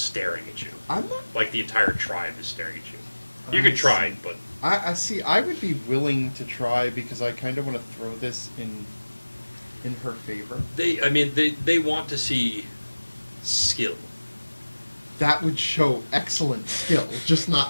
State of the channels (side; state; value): both; inverted; correlation -1.00